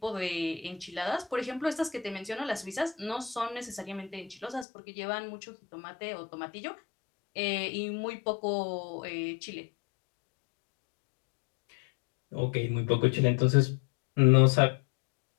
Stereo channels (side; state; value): right; drops out; at 4.7 s